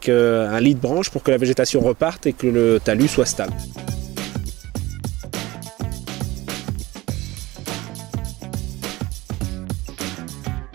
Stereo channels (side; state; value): left; quieter; 18.3 dB